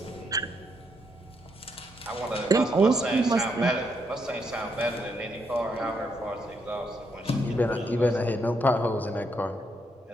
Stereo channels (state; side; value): normal; both; correlation 0.76